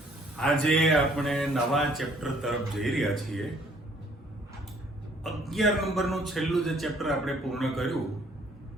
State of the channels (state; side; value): normal; both; correlation 0.61